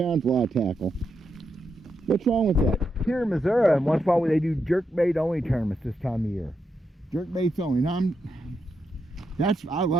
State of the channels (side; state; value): both; normal; correlation 0.83